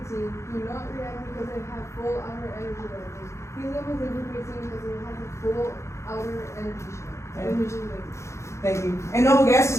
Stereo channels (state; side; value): late; right; 0.14 ms